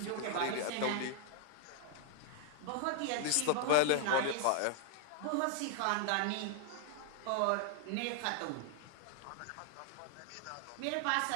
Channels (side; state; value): both; different; correlation 0.00